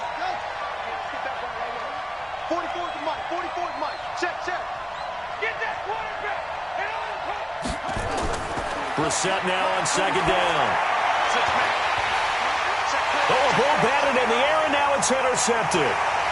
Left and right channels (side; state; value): both; identical; correlation 1.00